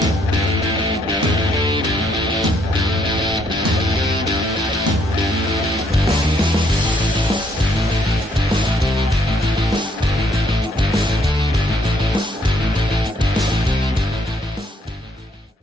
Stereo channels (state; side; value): normal; both; correlation 0.69